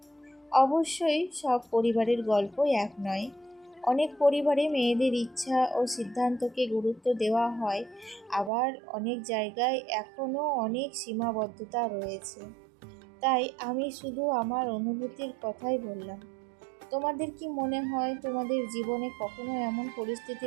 অবশ্যই সব পরিবারের গল্প এক নয়। অনেক পরিবারে মেয়েদের ইচ্ছা ও সিদ্ধান্তকে গুরুত্ব দেওয়া হয়, আবার অনেক জায়গায় এখনও অনেক সীমাবদ্ধতা রয়েছে। তাই আমি শুধু আমার অনুভূতির কথাই বললাম। তোমাদের কি মনে হয়, তোমাদের জীবনে কখনো এমন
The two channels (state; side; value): drops out; left; at 8.5 s